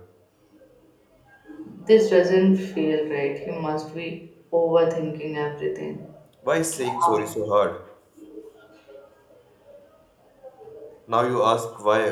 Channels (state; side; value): identical; both; correlation 1.00